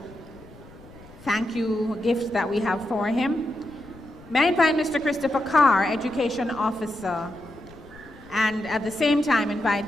thank you gift that we have for him. May I invite Mr. Christopher Carr, Education Officer, and at the same time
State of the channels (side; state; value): left; noise; rumble, 21 dB below the sound